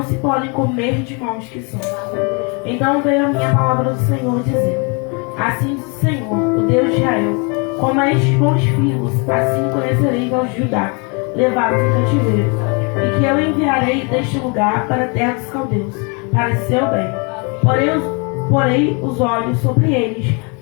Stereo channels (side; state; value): right; quieter; 32.9 dB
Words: se podem comer de maus que são. Então veio a minha palavra do Senhor, dizendo: Assim diz o Senhor, o Deus de Israel: Como a estes bons figos, assim conhecereis aos Judá, levados em cativeiro, e que eu enviarei deste lugar para a terra dos caldeus, para seu bem. Porei os olhos sobre eles,